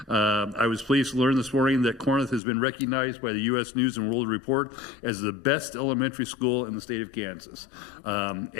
I was pleased to learn this morning that Corinth has been recognized by the U.S. News and World Report as the best elementary school in the state of Kansas.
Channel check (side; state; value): right; drops out; at 2.4 s